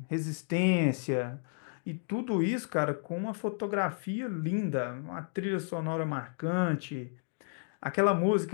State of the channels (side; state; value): right; silent; digital silence